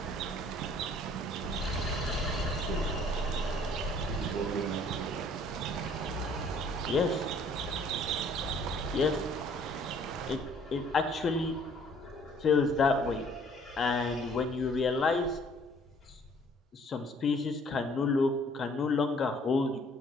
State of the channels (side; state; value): both; normal; correlation 0.58